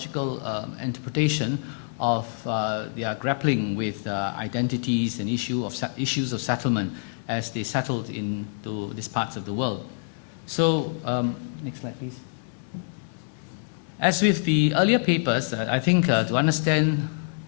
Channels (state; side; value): silent; right; digital silence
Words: interpretation of their grappling with identities and issues of settlement as they settled into these parts of the world. So, next slide, please. As with the earlier papers, I think to understand